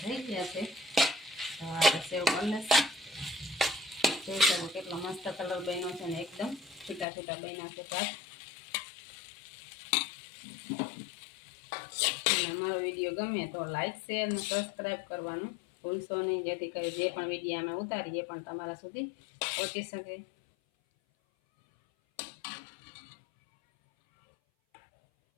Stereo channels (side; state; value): right; drops out; at 7.1 s